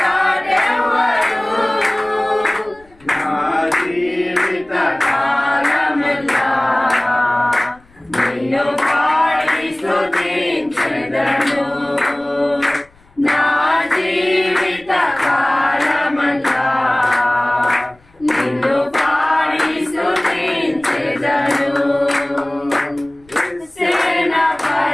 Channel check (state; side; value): noise; left; rumble, 29 dB below the sound